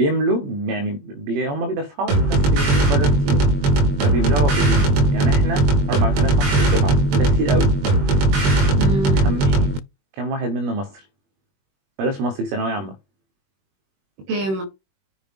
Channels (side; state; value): left; late; 21 ms